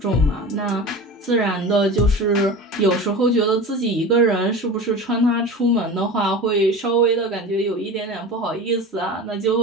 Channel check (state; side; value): normal; both; correlation 0.32